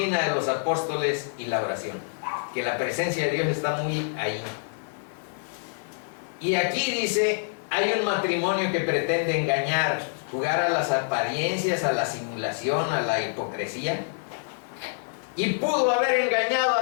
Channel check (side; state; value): right; silent; 57 dB below the other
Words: de los apóstoles y la oración, que la presencia de Dios está muy ahí. Y aquí dice, hay un matrimonio que pretende engañar, jugar a las apariencias, a la simulación, a la hipocresía, y pudo haber engañado